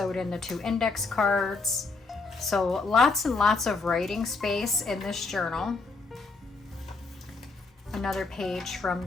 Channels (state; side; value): quieter; right; 3.9 dB